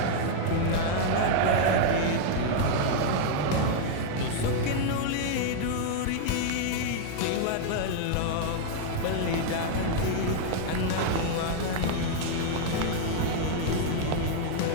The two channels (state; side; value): different; both; correlation -0.01